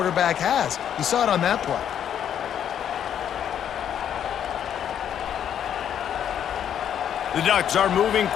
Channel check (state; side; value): quieter; right; 9.4 dB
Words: has. You saw it on that play. The Ducks are moving